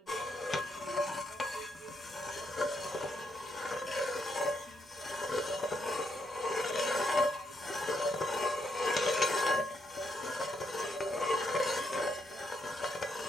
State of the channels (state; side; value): normal; both; correlation 0.78